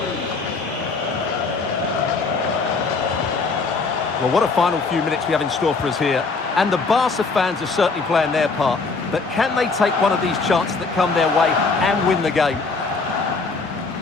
Well, what a final few minutes we have in store for us here. And the Barca fans are certainly playing their part. But can they take one of these chances that come their way and win the game?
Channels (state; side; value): quieter; right; 4.2 dB